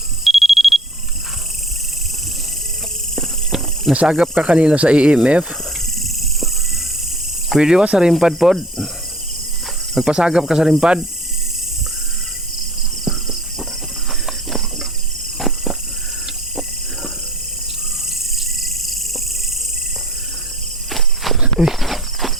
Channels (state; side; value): normal; both; correlation 0.50